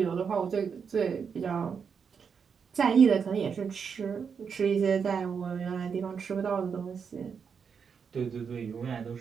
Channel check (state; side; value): quieter; left; 6.4 dB